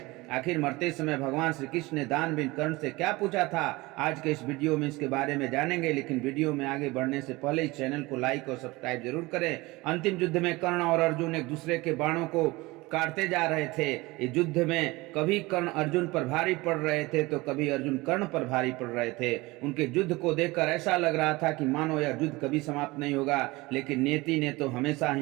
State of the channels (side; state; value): left; quieter; 21.8 dB